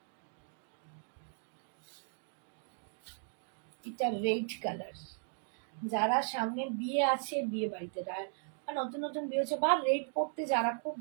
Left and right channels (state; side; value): silent; left; 53 dB below the other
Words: এটা রেড কালার। যারা সামনে বিয়ে আছে, বিয়ে বাড়িতে নতুন নতুন বিয়ে হচ্ছে, বা রেড পরতে যারা খুব